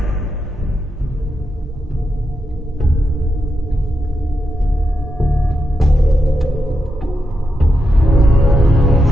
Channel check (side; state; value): both; normal; correlation 0.86